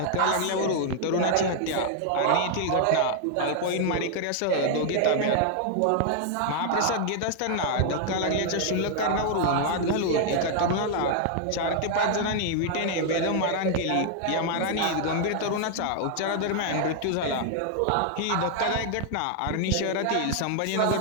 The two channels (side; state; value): both; different; correlation 0.00